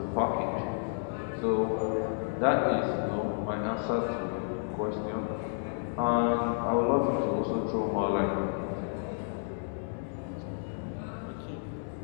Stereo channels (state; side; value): silent; right; digital silence